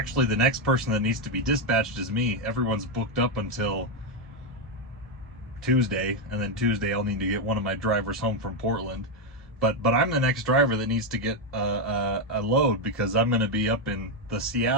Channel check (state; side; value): normal; both; correlation 0.05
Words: the next person that needs to be dispatched is me. Everyone's booked up until Tuesday, and then Tuesday I'll need to get one of my drivers home from Portland. But I'm the next driver that needs to get a load, because I'm going to be up in the